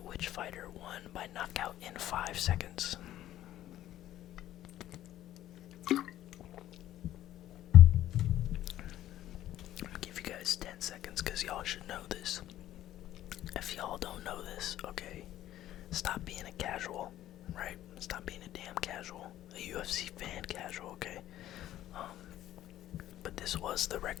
which fighter won by knockout in 5 seconds? I'm gonna give you guys 10 seconds because y'all should know this. If y'all don't know this, okay, stop being a casual, right? Stop being a damn casual, a UFC fan casual, okay? But this was the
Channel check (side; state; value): right; quieter; 13.2 dB